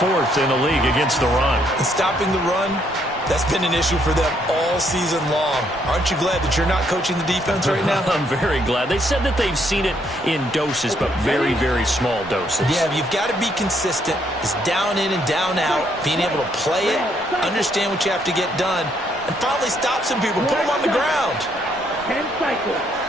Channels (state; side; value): normal; both; correlation 0.71